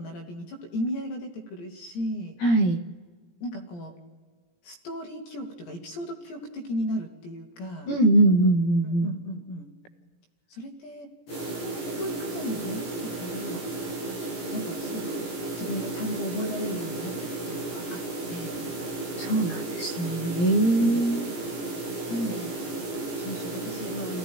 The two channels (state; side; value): late; right; 17 ms